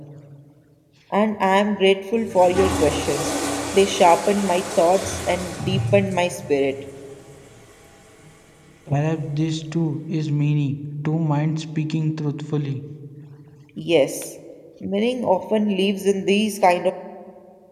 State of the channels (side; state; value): both; identical; correlation 1.00